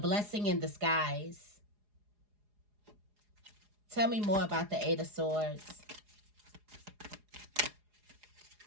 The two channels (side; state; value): left; late; 4.8 ms